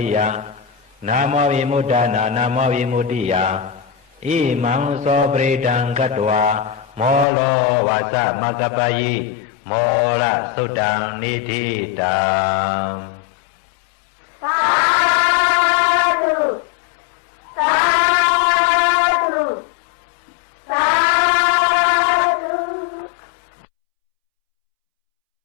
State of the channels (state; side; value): drops out; right; at 7.2 s